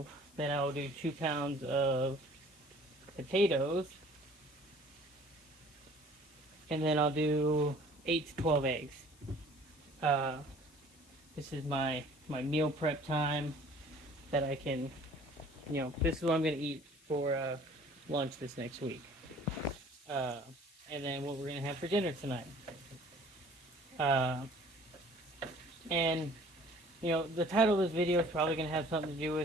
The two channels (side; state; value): left; noise; hiss, 27 dB below the sound